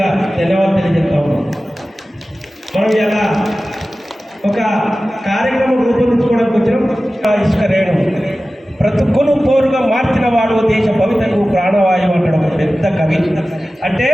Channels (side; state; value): both; normal; correlation 0.96